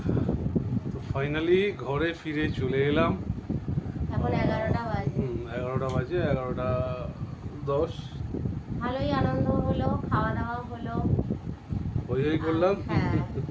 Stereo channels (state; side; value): identical; both; correlation 1.00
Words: তো ফাইনালি ঘরে ফিরে চলে এলাম। এখন 11টা বাজে। 11টা বাজে, 11:10। ভালোই আনন্দ হলো, খাওয়া দাওয়া হলো, হই করলাম। হ্যাঁ।